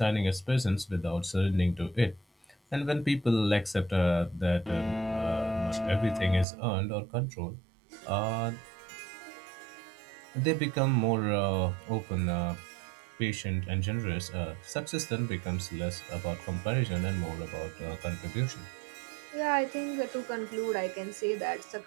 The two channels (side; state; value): left; drops out; at 6.5 s